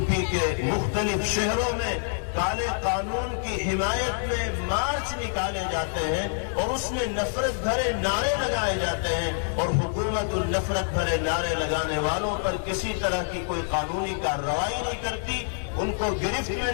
پی کے مختلف شہروں میں کالے قانون کی حمایت میں مارچ نکالے جاتے ہیں اور اس میں نفرت بھرے نعرے لگائے جاتے ہیں اور حکومت ان نفرت بھرے نعرے لگانے والوں پر کسی طرح کی کوئی قانونی کارروائی نہیں کرتی، ان کو گرفت میں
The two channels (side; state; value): right; silent; digital silence